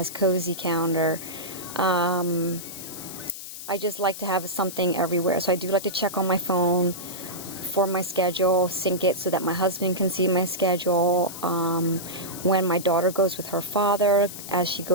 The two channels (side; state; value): left; noise; hiss, 11 dB below the sound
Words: Cozy Calendar. I just like to have something everywhere, so I do like to check on my phone for my schedule, sync it so that my husband can see my schedule. When my daughter goes with her father, as she